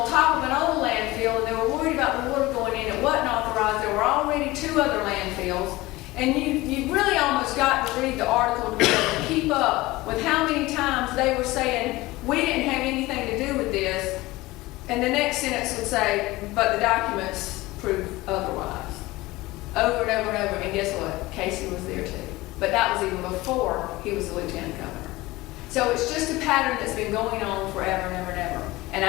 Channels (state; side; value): quieter; right; 19.7 dB